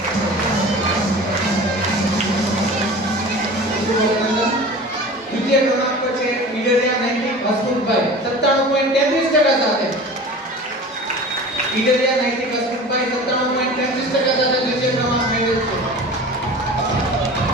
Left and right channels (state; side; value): normal; both; correlation 0.38